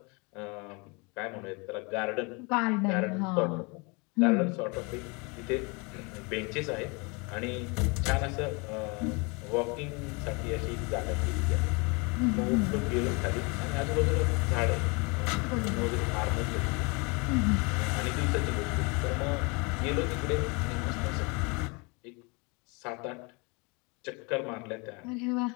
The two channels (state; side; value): quieter; right; 29.9 dB